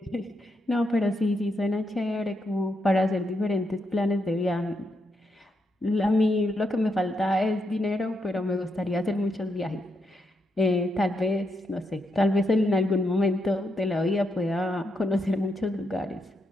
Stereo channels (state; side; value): normal; both; correlation 0.80